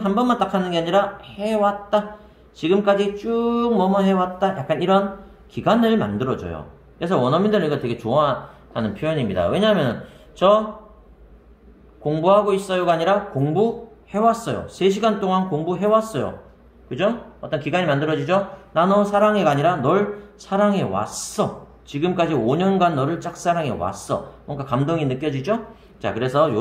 해왔다. 지금까지 쭉 뭐뭐 해왔다. 약간 이런 기간을 만들어줘요. 그래서 원어민들은 이거 되게 좋아하는 표현입니다. 왜냐하면 저 공부하고 있어요가 아니라 공부해왔어요. 3시간 동안 공부해왔어요. 그죠? 어떤 기간이 만들어지죠? 나 너 사랑해가 아니라 널 사랑해왔어. 지금까지 5년간 너를 짝사랑해왔어. 뭔가 감동이 느껴지죠? 자, 그래서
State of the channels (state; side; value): identical; both; correlation 1.00